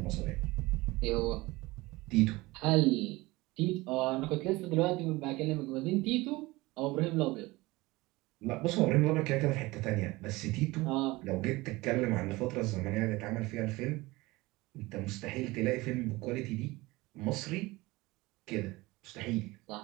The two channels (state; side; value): quieter; left; 21.1 dB